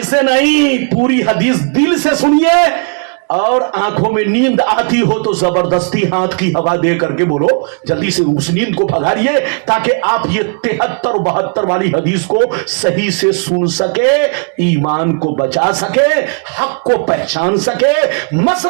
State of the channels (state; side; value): quieter; left; 40.0 dB